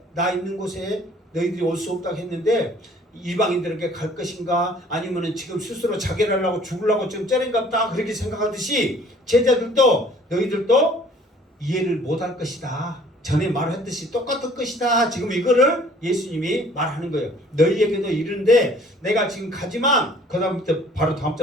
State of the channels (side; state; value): both; normal; correlation 0.54